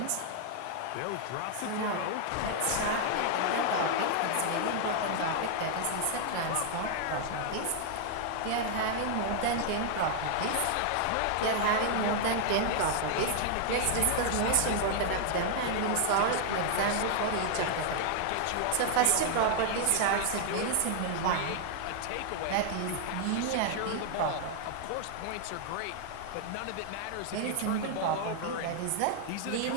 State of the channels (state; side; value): different; both; correlation 0.00